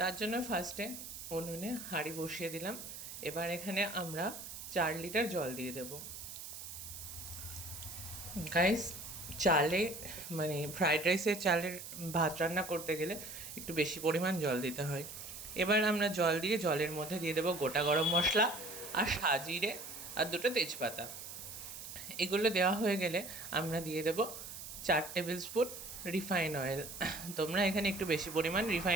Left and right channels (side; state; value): right; noise; hiss, 10 dB below the sound